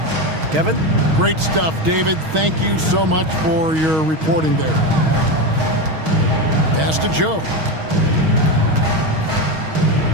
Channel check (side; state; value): left; late; 6.3 ms